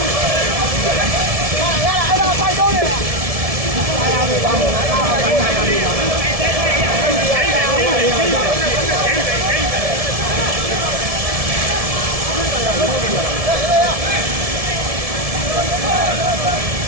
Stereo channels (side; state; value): left; late; 1.7 ms